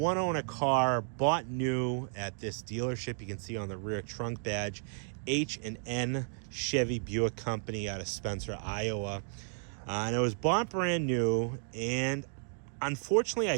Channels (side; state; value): left; silent; 56 dB below the other